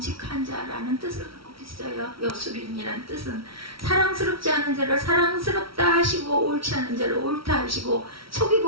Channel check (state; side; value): late; left; 0.75 ms